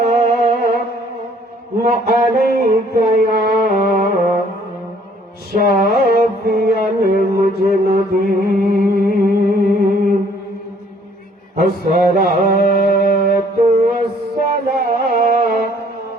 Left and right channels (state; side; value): normal; both; correlation 0.61